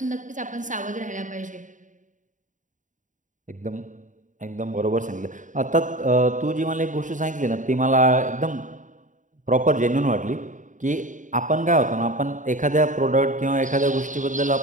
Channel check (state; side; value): late; left; 0.37 ms